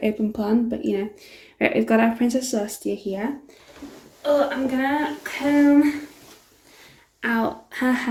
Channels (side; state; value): both; identical; correlation 1.00